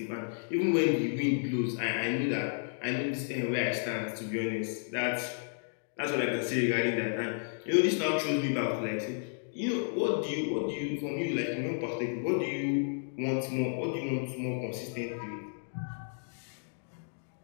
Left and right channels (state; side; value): silent; right; digital silence